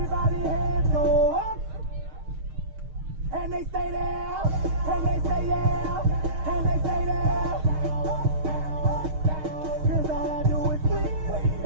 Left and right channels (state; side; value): late; left; 6.5 ms